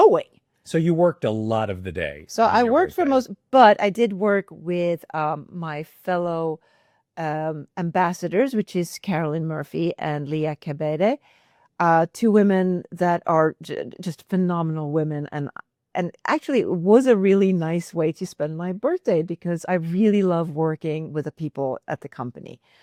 So you worked a lot of the day So on I your worked for birthday. most, but I did work with my fellow ambassadors, which is Carolyn Murphy and Leah Cabede, two women that are just phenomenal women, and actually it was a really nice way to spend my birthday because I really love working with the people at the company.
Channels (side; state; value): both; identical; correlation 1.00